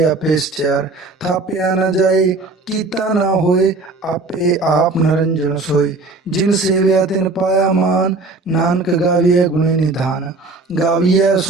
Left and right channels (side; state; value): left; quieter; 3.5 dB